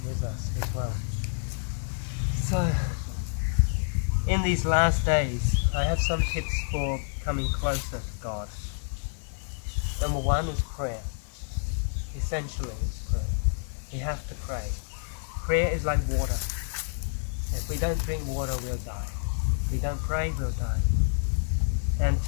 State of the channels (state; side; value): silent; right; 58 dB below the other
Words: with us as well. So in these last days, I have some tips for coming closer to God. Number one is prayer. Essentially, it's prayer. We have to pray. Prayer is like water. If we don't drink water, we'll die. If we don't pray, we'll die. And